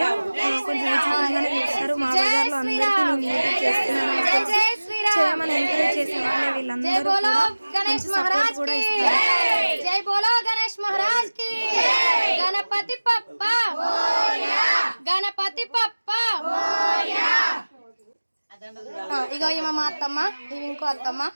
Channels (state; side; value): inverted; both; correlation -1.00